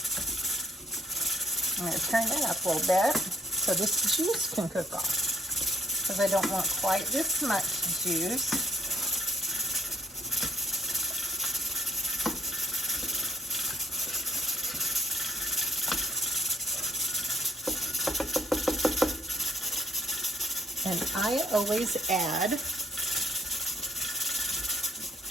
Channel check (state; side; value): normal; both; correlation 0.67